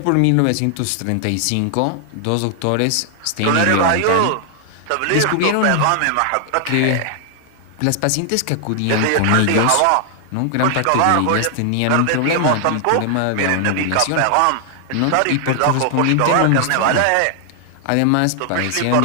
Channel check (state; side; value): different; both; correlation 0.00